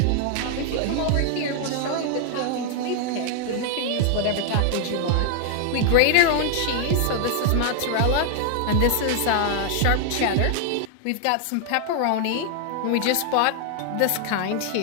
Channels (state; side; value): different; both; correlation 0.00